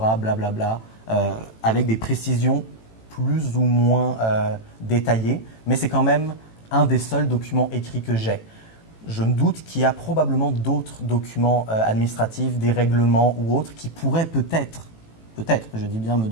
blablabla, avec des précisions plus ou moins détaillées, mais c'est quand même un des seuls documents écrits que j'ai. Je me doute qu'il y a probablement d'autres documents administratifs, des règlements ou autres, qui pourraient peut-être, je dis bien, me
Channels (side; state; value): right; late; 18 ms